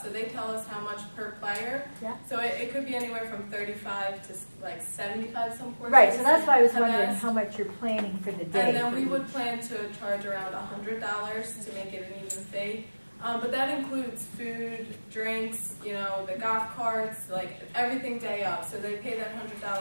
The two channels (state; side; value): inverted; both; correlation -1.00